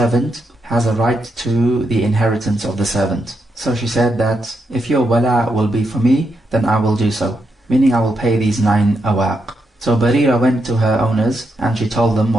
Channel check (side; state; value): both; normal; correlation 0.82